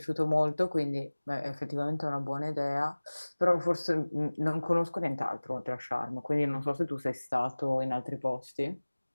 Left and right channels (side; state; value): both; inverted; correlation -1.00